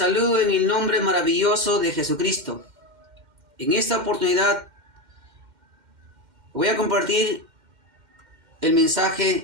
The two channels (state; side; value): late; left; 2.1 ms